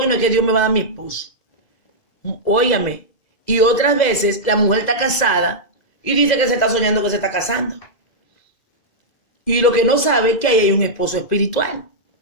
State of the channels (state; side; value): late; right; 2.0 ms